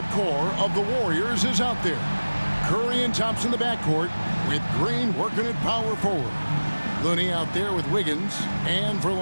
core of the Warriors is out there. Curry and Thompson in the backcourt, with Green working at power forward. Looney out there with Wiggins, and for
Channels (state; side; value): inverted; both; correlation -1.00